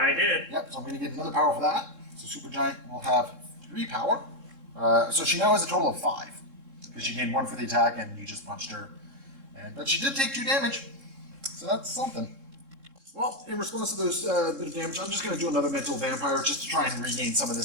did. Yep. So I'm going to get another power for that. So Supergiant will have 3 power. So she now has a total of 5 because she gained 1 for the attack, and you just punched her. But she did take 2 damage, so that's something. Well, in response to those bit of damage, I'm just going to do another mental vampire just to try and regain some of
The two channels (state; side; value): late; left; 3.7 ms